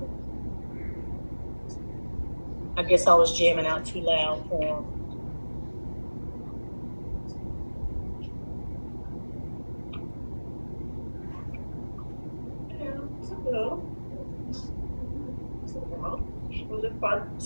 I guess I was jamming out too loud for him.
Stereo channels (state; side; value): inverted; both; correlation -1.00